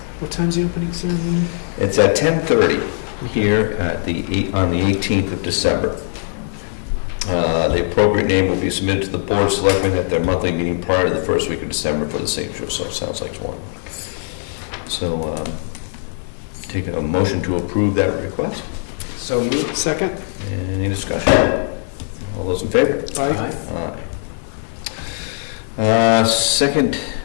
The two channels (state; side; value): silent; right; 56 dB below the other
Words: What time's the opening ceremony? It's at 10:30 here on the 18th of December. The appropriate name will be submitted to the Board of Selectmen at their monthly meeting prior to the first week of December for the signature, so it sounds like one. So take a motion to approve that request. So moved. Second. Any discussion? All those in favor? Aye. Aye. Second